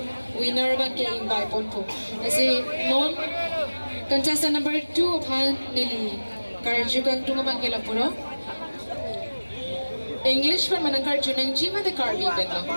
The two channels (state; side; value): inverted; both; correlation -1.00